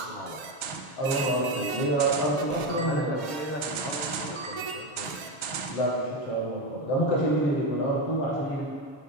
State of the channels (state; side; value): late; right; 6.4 ms